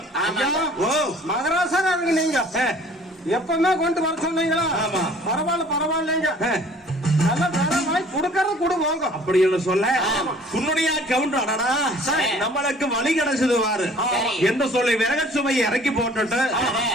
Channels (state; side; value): normal; both; correlation 0.52